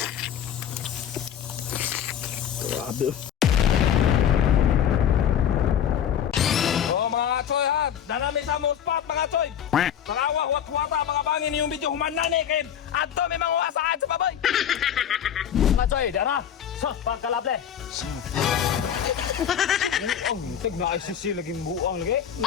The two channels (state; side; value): quieter; right; 9.2 dB